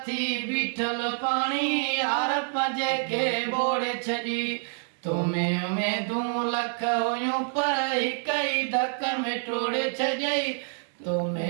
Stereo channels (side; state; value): left; silent; 60 dB below the other